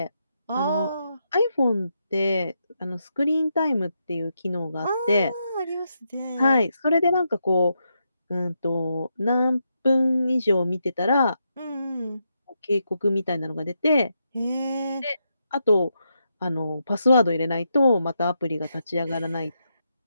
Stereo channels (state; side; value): inverted; both; correlation -0.83